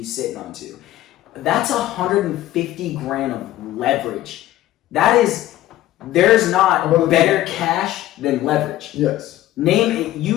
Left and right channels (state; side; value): quieter; right; 14.6 dB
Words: sitting on to. That's 150 grand of leverage. There's not better cash than leverage. Yes. Name it.